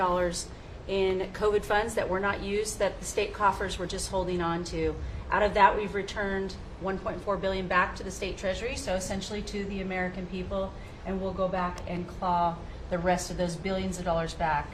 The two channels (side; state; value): both; identical; correlation 1.00